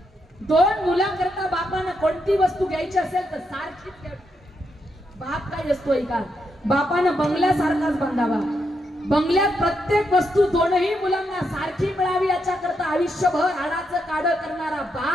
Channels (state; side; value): normal; both; correlation 0.81